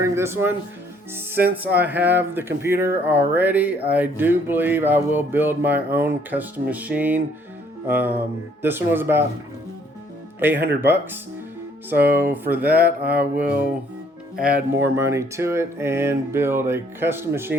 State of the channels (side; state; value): both; normal; correlation 0.63